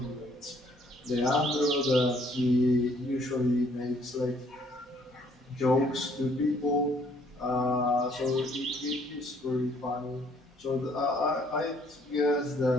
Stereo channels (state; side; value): normal; both; correlation 0.63